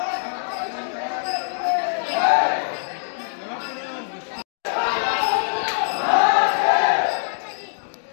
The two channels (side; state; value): right; silent; digital silence